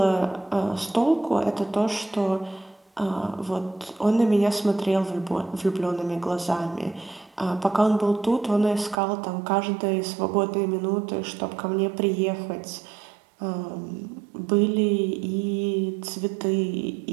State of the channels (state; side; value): drops out; left; at 9.0 s